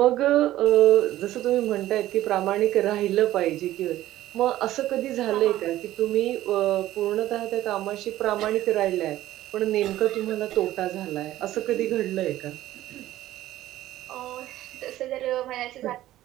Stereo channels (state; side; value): quieter; left; 14.5 dB